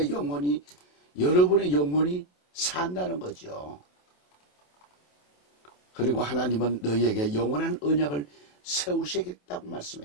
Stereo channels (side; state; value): right; late; 28 ms